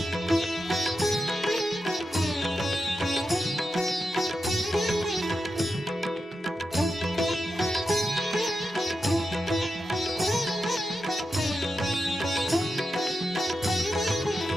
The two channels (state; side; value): normal; both; correlation 0.89